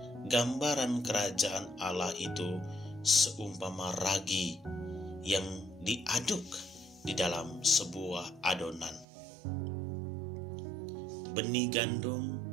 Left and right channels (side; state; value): left; drops out; at 9.1 s